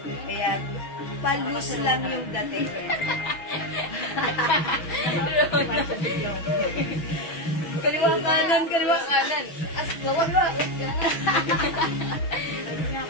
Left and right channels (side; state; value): right; late; 6.2 ms